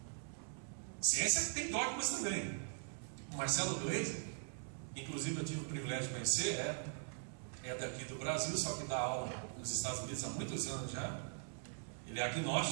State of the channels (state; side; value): silent; left; digital silence